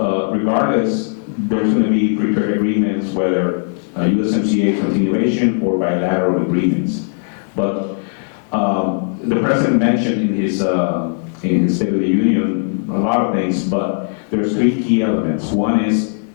regardless, there's going to be free trade agreements, whether USMCA continuation or bilateral agreements. But the president mentioned in his State of the Union a lot of things, but there's 3 key elements. One is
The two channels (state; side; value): silent; right; digital silence